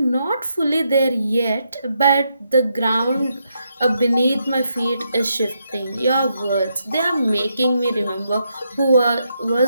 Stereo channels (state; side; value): inverted; both; correlation -0.80